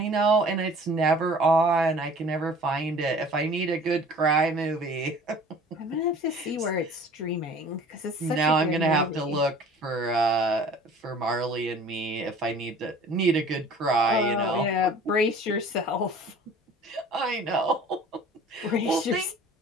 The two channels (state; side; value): normal; both; correlation 0.47